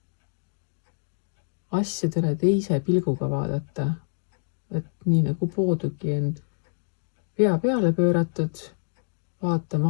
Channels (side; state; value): right; silent; digital silence